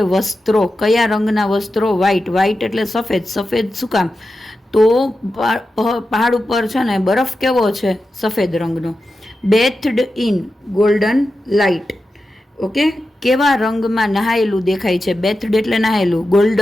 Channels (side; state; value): both; normal; correlation 0.91